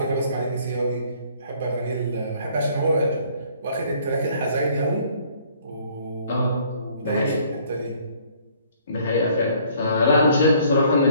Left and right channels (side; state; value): both; inverted; correlation -0.60